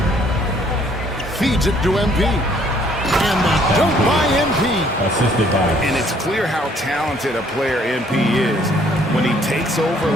Feeds it to MP. And the dunk by MP. Assisted by. And it's clear how talented a player MP is. When he takes over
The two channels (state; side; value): normal; both; correlation 0.63